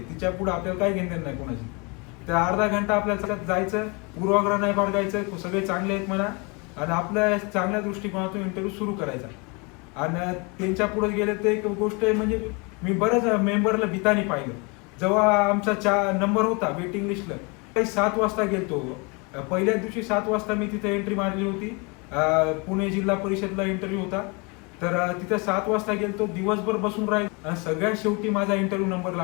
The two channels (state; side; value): quieter; right; 30.2 dB